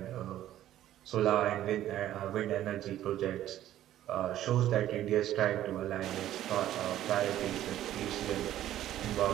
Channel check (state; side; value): quieter; left; 12.7 dB